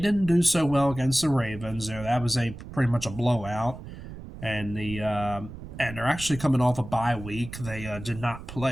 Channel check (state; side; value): noise; right; rumble, 12 dB below the sound